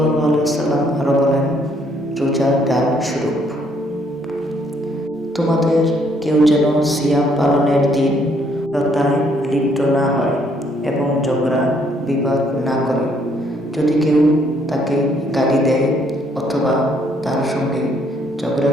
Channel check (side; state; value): both; normal; correlation 0.68